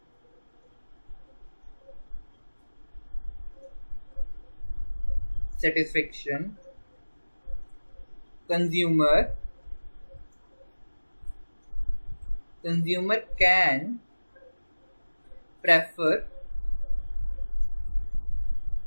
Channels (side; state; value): both; inverted; correlation -1.00